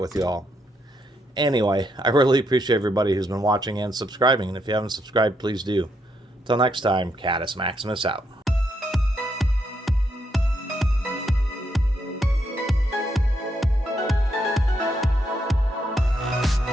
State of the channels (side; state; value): both; normal; correlation 0.78